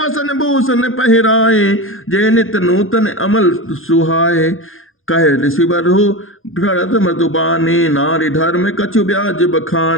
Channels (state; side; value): late; right; 0.60 ms